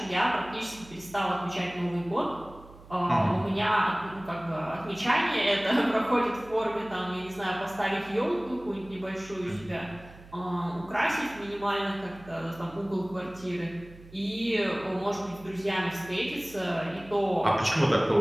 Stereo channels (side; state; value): right; noise; hum, 20 dB below the sound